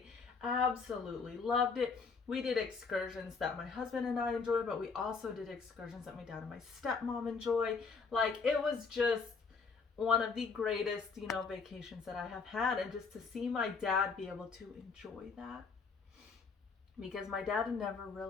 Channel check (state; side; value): quieter; right; 4.9 dB